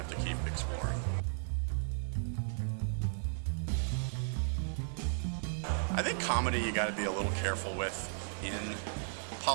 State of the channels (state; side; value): silent; left; digital silence